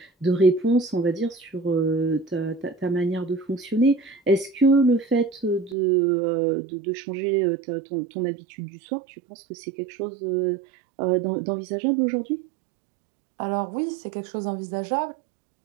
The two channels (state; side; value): drops out; left; at 5.8 s